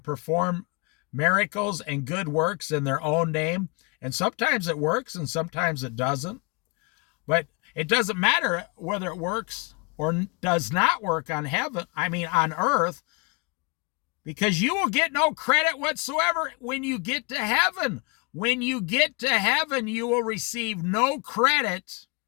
miracles and good works in their own name. And sometimes it works and sometimes it doesn't. But it doesn't matter whether it works or does not work on earth, because you will get no credit whatsoever when you get to heaven. When you get to heaven, you will receive no credit.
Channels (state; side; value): quieter; right; 29.9 dB